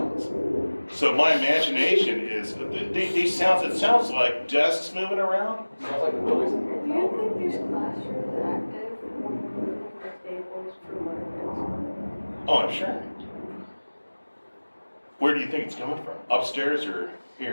So my imagination is these sounds. It sounds like desks moving around. Sounds like the building's Do you think these classrooms active when we're moving the tables for learning? Oh, I'm sure. Where do you think it's coming from? Upstairs or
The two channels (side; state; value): both; inverted; correlation -1.00